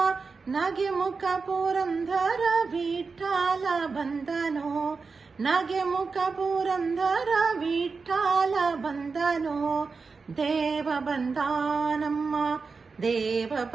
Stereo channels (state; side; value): quieter; left; 4.6 dB